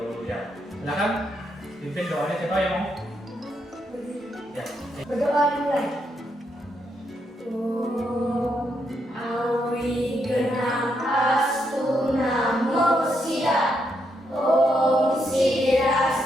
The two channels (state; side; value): normal; both; correlation 0.79